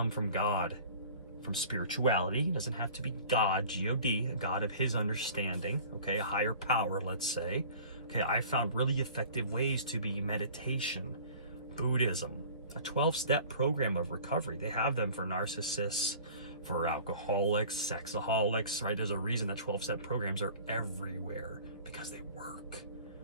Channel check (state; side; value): inverted; both; correlation -0.45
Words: from God, from spirituality. It doesn't have to be God, G-O-D, a God of his understanding, okay? A higher power, let's say. Okay, I found really effective ways to be meditation, Buddhism, a 12-step program of recovery. They have them for narcissists, for alcoholics, sexaholics, right? There's a reason that 12-step programs are everywhere, because they work,